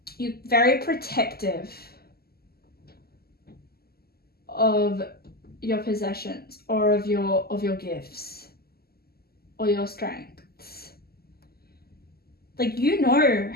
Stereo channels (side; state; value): right; late; 0.45 ms